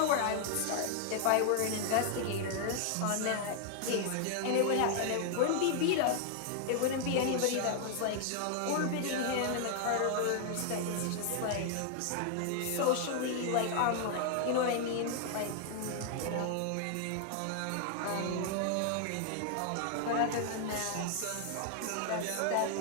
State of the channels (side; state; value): both; different; correlation 0.00